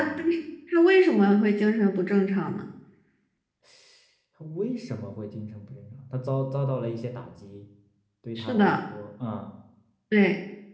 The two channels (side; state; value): both; identical; correlation 1.00